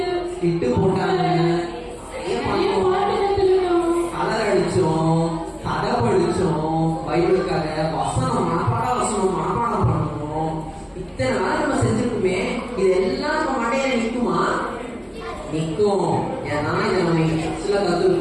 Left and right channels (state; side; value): identical; both; correlation 1.00